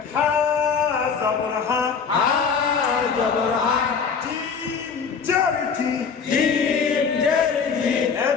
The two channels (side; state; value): right; quieter; 6.0 dB